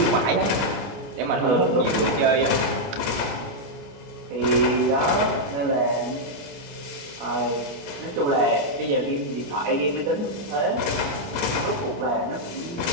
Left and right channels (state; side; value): late; left; 29 ms